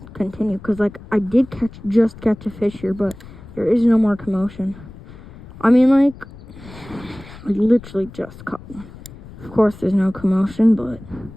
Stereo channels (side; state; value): left; noise; rumble, 18 dB below the sound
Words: continue, because, like, I did just catch a fish here, but there is no more commotion. I mean, like, I literally just caught one. Of course, there's no commotion, but